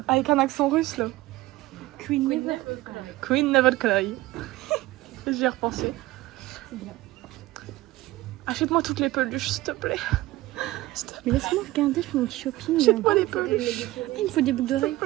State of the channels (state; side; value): quieter; left; 18.0 dB